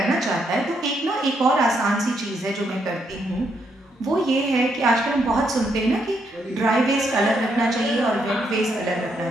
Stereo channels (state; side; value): normal; both; correlation 0.76